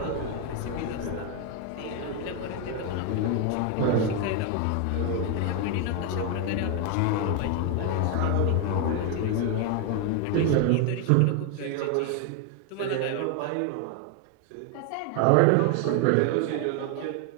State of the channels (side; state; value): both; different; correlation 0.01